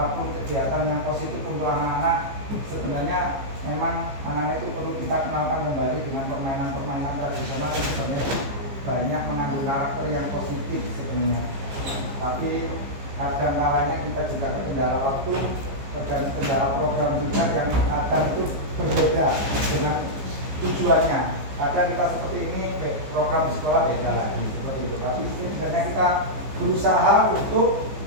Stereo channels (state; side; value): late; left; 15 ms